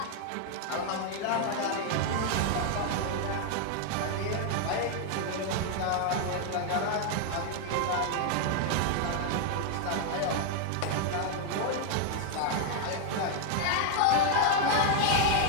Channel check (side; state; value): both; different; correlation 0.01